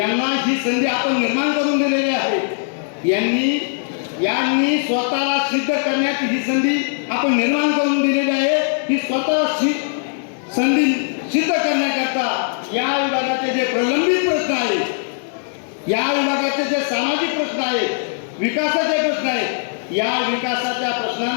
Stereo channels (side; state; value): right; silent; digital silence